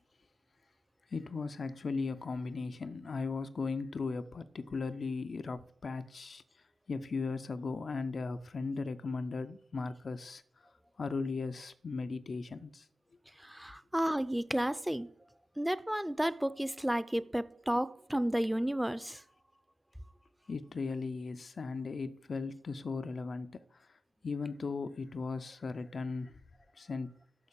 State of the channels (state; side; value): normal; both; correlation 0.95